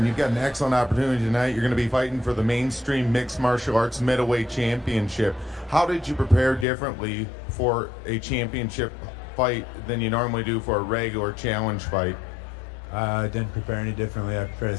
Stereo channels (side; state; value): right; drops out; at 6.7 s